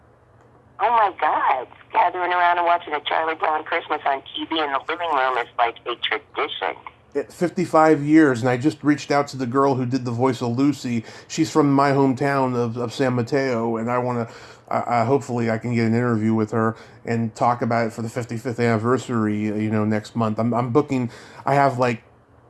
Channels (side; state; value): both; identical; correlation 1.00